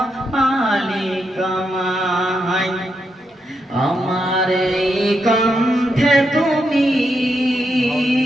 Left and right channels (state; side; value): normal; both; correlation 0.82